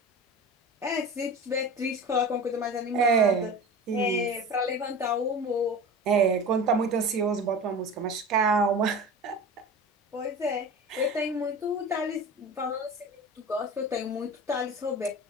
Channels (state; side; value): normal; both; correlation 0.34